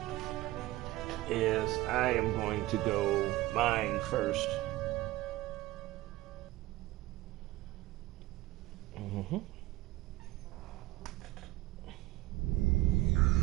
is I am going to go mine first.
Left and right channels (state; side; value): quieter; left; 17.6 dB